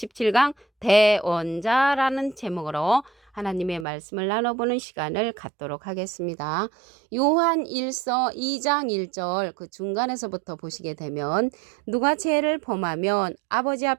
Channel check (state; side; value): drops out; left; at 3.9 s